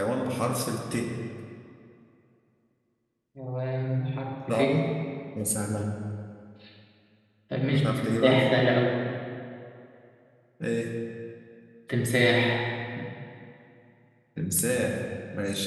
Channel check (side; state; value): both; identical; correlation 1.00